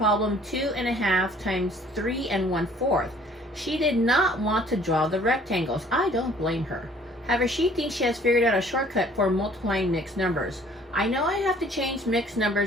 2.5 times 3 1/4. She did not want to draw the rectangles. I don't blame her. However, she thinks she has figured out a shortcut for multiplying mixed numbers. I know I have to change mixed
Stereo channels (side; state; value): both; normal; correlation 0.56